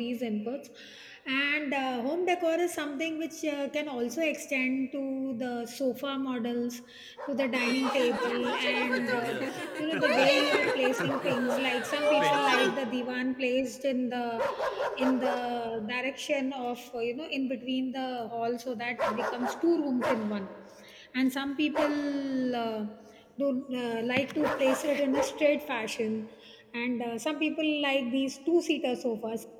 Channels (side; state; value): both; identical; correlation 1.00